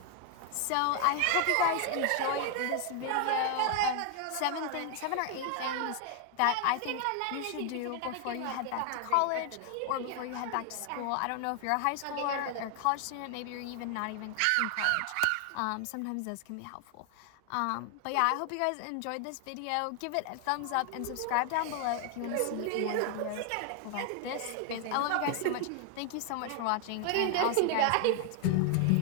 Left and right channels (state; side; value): different; both; correlation 0.00